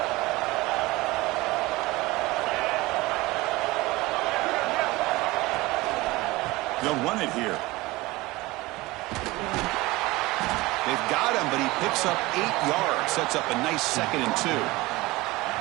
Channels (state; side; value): quieter; left; 20.8 dB